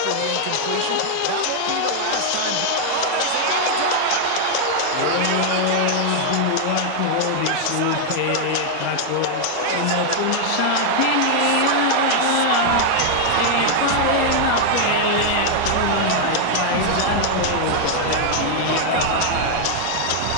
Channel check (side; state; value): both; different; correlation 0.00